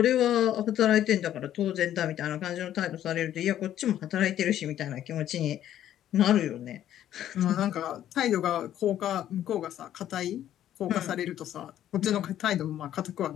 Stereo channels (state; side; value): quieter; right; 11.6 dB